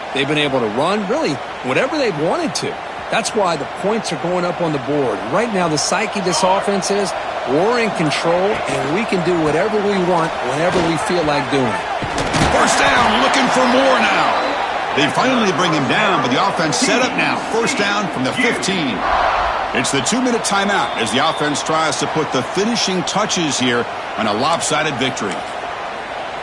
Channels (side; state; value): both; identical; correlation 1.00